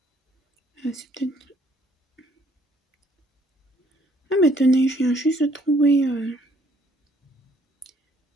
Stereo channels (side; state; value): both; normal; correlation 0.64